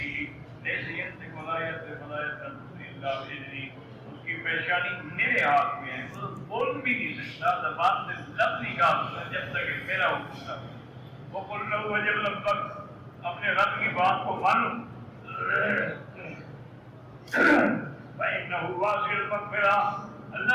ان کی پیشانی میرے ہاتھ میں ہے، وہ بول بھی نہیں سکتا، زبان سے لفظ نکالتا جب تک میرا حکم تھا. وہ بول رہا ہوا جب لب تک اپنے رب کی بات کو مانو. فإنه واسع المغفرة.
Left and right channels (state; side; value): identical; both; correlation 1.00